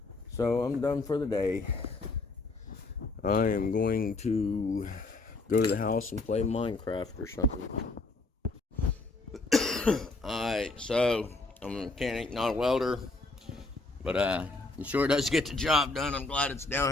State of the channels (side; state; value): right; quieter; 3.4 dB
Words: So I'm done for the day. I am going to go to the house and play Minecraft or something. Alright, so I'm a mechanic, not a welder, but it sure does get the job done. I'm glad it's